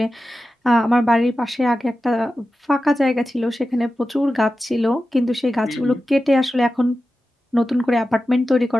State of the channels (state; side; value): normal; both; correlation 0.93